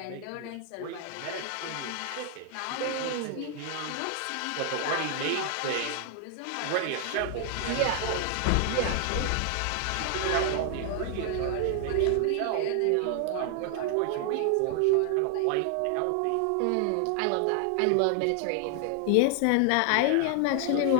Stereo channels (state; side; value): different; both; correlation 0.00